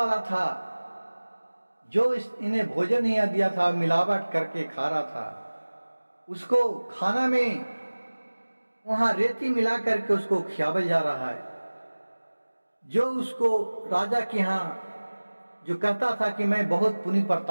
था, जो इन्हें भोजन नहीं दिया था, मिलावट करके खा रहा था, उसको खाना में वहां रेती मिला करके उसको खियावल जा रहा है। जो उसको राजा के यहाँ जो कहता था कि मैं बहुत पुण्य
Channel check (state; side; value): inverted; both; correlation -1.00